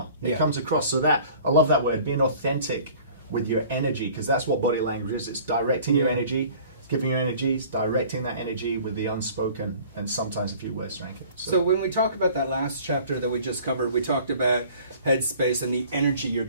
It comes across. So that, I love that word, being authentic with your energy, because that's what body language is. It's directing your energy, giving your energies, directing that energy with the unspoken, and sometimes a few words to rank it. So when we talk about that last chapter that we just covered, we talked about headspace and the energy you're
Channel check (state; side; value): inverted; both; correlation -0.49